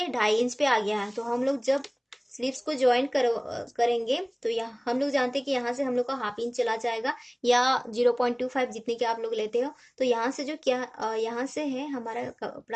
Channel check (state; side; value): identical; both; correlation 1.00